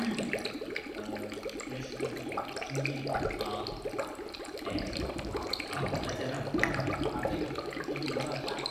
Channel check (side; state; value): both; identical; correlation 1.00